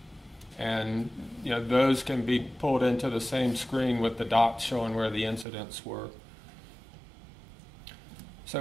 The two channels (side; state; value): left; drops out; at 5.5 s